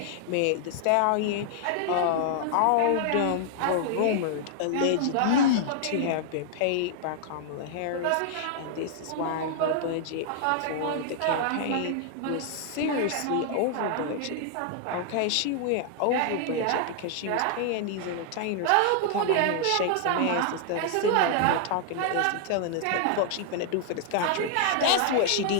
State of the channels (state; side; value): different; both; correlation 0.00